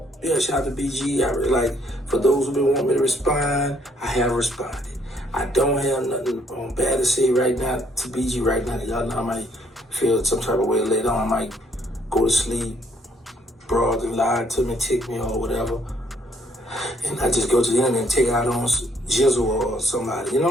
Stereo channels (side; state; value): both; normal; correlation 0.67